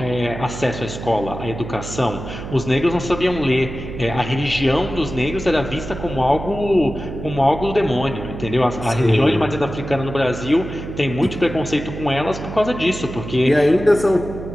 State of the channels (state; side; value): noise; right; hum, 9 dB below the sound